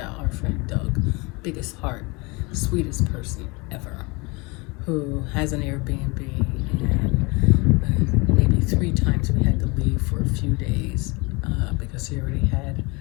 our friend Doug, biggest heart, sweetest person ever, who has an Airbnb, and maybe 3 times we had to leave for a few days because he already had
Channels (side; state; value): right; quieter; 27.2 dB